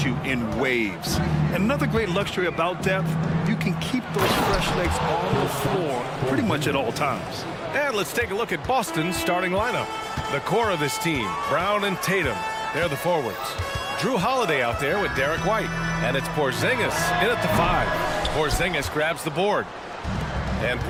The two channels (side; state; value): both; identical; correlation 1.00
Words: you in waves. And another great luxury about depth, you can keep those fresh legs on the floor pretty much at all times. And let's take a look at Boston's starting lineup. The core of this team, Brown and Tatum, they're the forwards. Drew Holiday out there with Derek White. And it's Porzingis in at the 5. Porzingis grabs the board. And